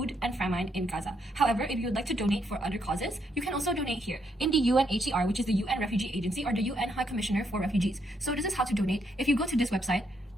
and famine in Gaza. However, if you would like to donate for other causes, you can also donate here in the UNHCR, which is the UN Refugee Agency or the UN High Commissioner for Refugees. So this is how to donate. If you go to this website,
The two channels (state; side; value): normal; both; correlation 0.75